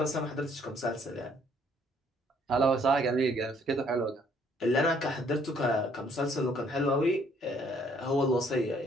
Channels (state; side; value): normal; both; correlation 0.64